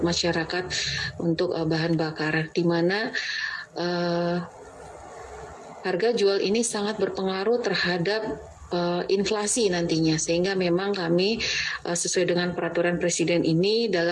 masyarakat, untuk bahan bakar, di mana harga jual ini sangat berpengaruh terhadap inflasi nantinya, sehingga memang kami sesuai dengan peraturan Presiden ini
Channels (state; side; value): identical; both; correlation 1.00